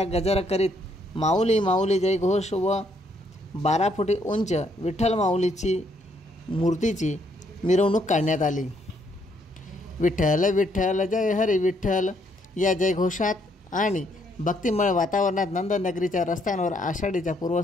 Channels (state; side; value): normal; both; correlation 0.71